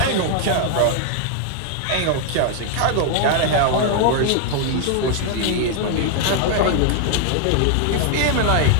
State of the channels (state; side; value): different; both; correlation 0.00